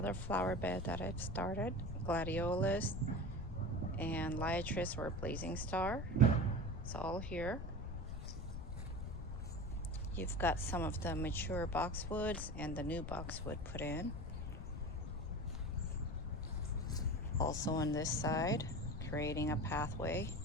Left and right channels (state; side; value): noise; left; rumble, 6 dB below the sound